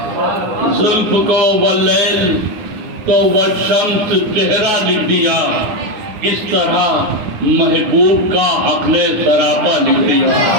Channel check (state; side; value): late; left; 9.9 ms